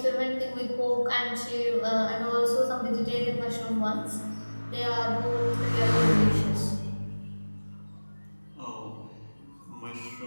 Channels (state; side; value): inverted; both; correlation -1.00